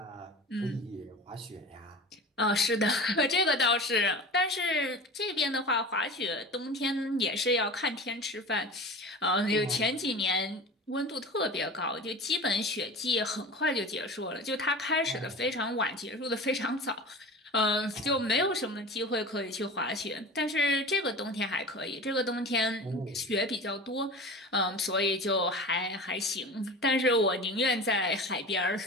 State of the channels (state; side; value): normal; both; correlation 0.34